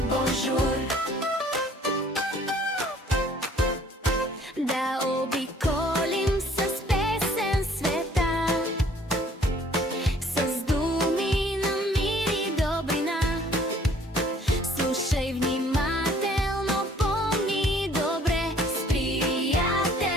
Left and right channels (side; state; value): both; normal; correlation 0.57